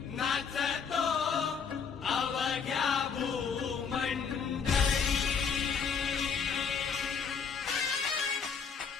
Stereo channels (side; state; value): right; quieter; 6.2 dB